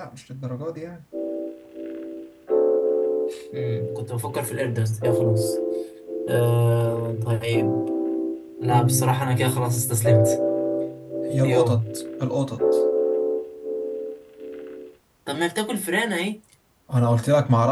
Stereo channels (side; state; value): both; identical; correlation 1.00